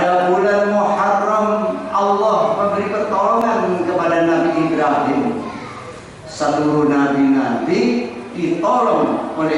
bulan Muharram, Allah memberi pertolongan kepada Nabi Ibrahim. Seluruh nabi-nabi ditolong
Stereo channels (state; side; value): identical; both; correlation 1.00